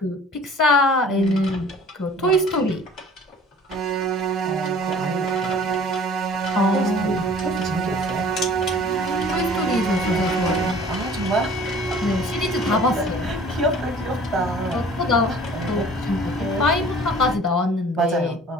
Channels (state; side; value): normal; both; correlation 0.48